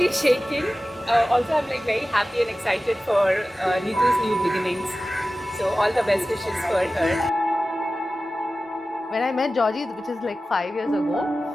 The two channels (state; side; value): normal; both; correlation 0.95